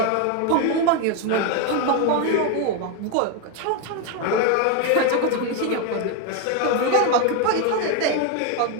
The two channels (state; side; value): different; both; correlation 0.01